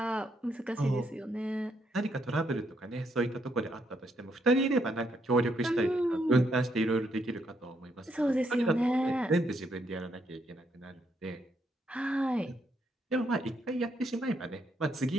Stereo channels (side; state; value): both; normal; correlation 0.75